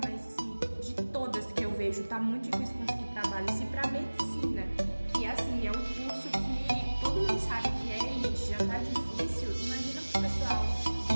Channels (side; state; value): both; inverted; correlation -1.00